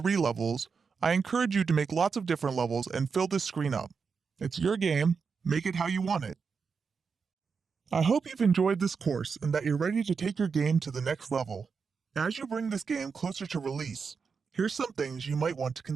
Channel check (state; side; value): quieter; left; 5.5 dB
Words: levels, I encourage you to make lots of different levels and fill this screen up. It's your game, make it how you want it. I hope you've enjoyed this course and that you're ready to take your game to the next level. As you bring this game closer to release, here's some things you might want to